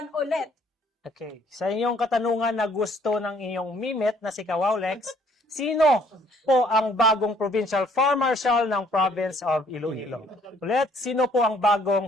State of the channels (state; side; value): normal; both; correlation 0.62